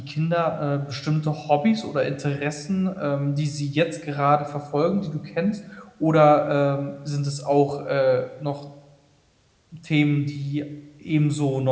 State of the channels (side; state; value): both; identical; correlation 1.00